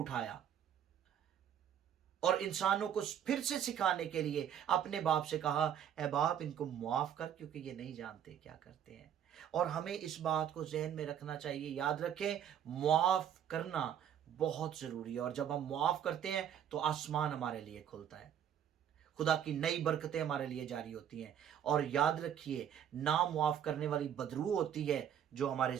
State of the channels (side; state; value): left; quieter; 9.4 dB